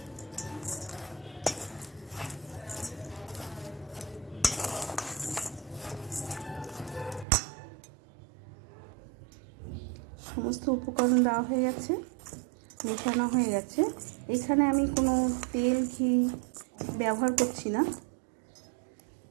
সমস্ত উপকরণ দেওয়া হয়ে গেছে, মেশানো হয়ে গেছে। এখানে আমি কোনো তেল ঘি ব্যবহার করছি না,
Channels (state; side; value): drops out; left; at 7.2 s